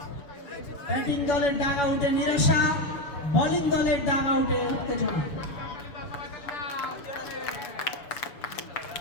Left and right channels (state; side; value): late; right; 6.7 ms